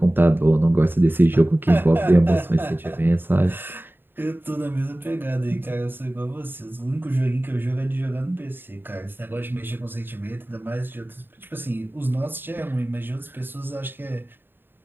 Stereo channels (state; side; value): late; left; 0.098 ms